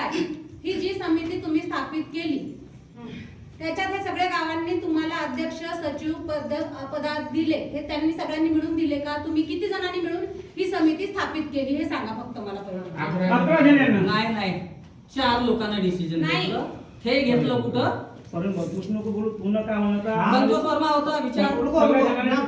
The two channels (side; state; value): both; identical; correlation 1.00